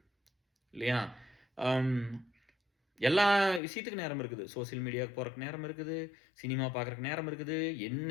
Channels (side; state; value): right; drops out; at 3.6 s